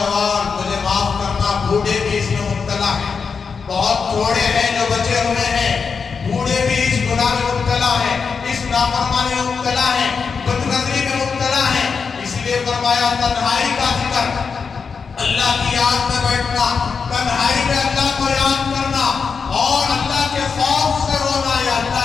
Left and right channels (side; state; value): right; quieter; 5.5 dB